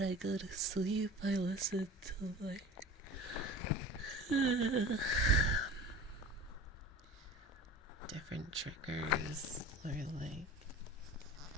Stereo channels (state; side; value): normal; both; correlation 0.37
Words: go to sleep, I listen to, like, different triggers, or, like,